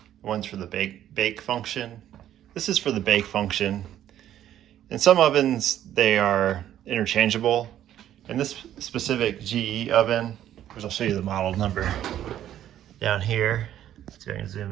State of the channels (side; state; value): left; quieter; 11.5 dB